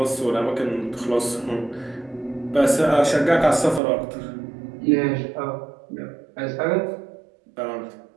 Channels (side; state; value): left; drops out; at 3.8 s